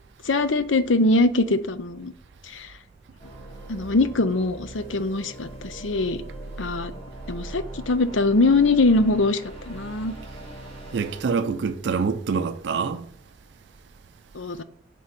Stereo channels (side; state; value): both; normal; correlation 0.22